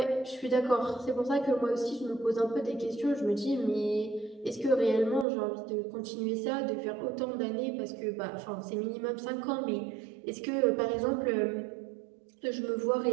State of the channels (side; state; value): left; drops out; at 5.2 s